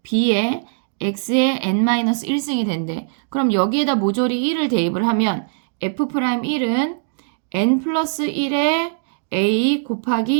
b의 x의 n-1승이 된대. 그럼 여기에다 모조리 1을 대입을 하면 f'1은 n 플러스 1의 a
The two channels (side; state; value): left; silent; digital silence